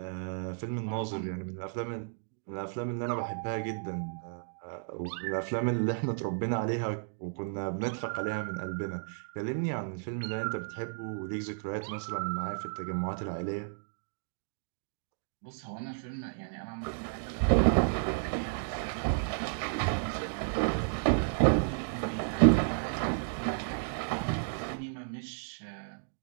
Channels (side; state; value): left; silent; digital silence